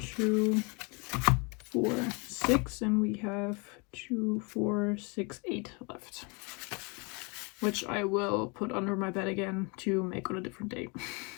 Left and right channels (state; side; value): quieter; right; 31.1 dB